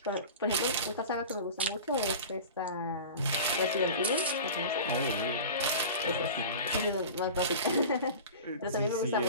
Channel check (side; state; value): both; inverted; correlation -0.34